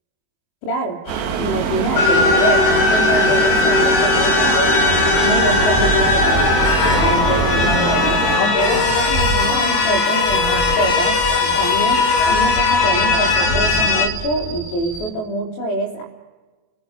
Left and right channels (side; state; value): right; late; 23 ms